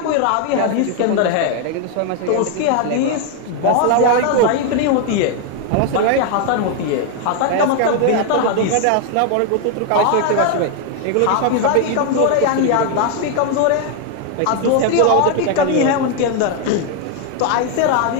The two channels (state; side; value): different; both; correlation 0.01